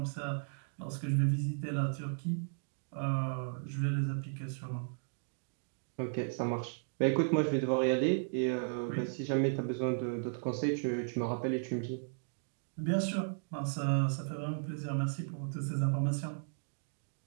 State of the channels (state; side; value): silent; left; digital silence